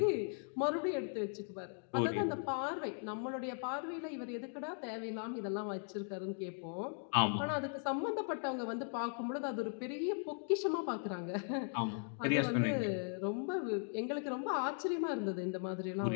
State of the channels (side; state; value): right; silent; 52 dB below the other